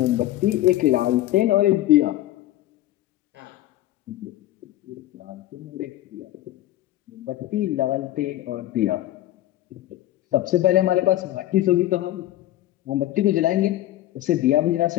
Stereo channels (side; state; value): right; quieter; 14.6 dB